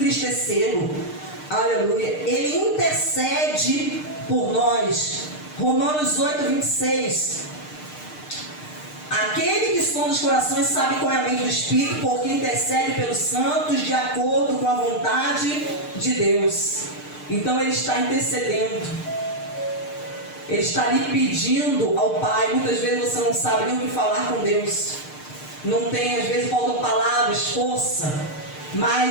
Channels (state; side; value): late; right; 6.6 ms